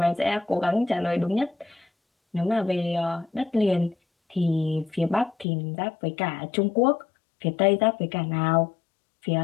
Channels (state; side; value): drops out; right; at 5.5 s